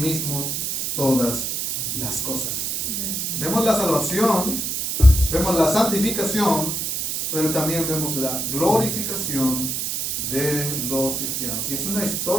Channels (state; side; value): noise; right; hiss, 1 dB below the sound